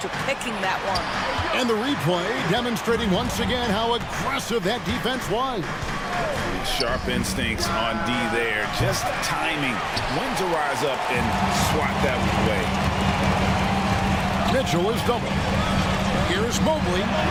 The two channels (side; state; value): both; identical; correlation 1.00